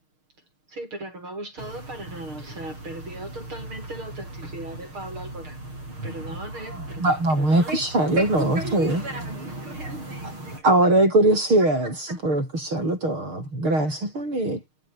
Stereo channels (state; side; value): late; left; 6.5 ms